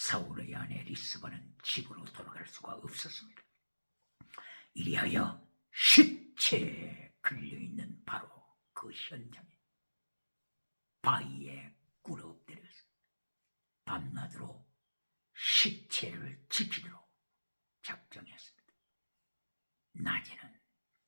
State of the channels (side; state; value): both; inverted; correlation -1.00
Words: 아내 리스바는 집으로 돌아갈 수가 없었습니다. 이리하여 시체에 걸려있는 바로 그 현장에 바위에 꿇어 엎드려서 밤낮으로 시체를 지키도록 작정했습니다. 낮에는